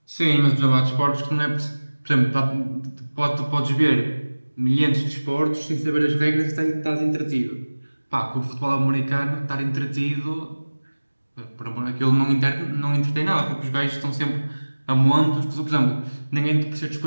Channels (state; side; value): inverted; both; correlation -1.00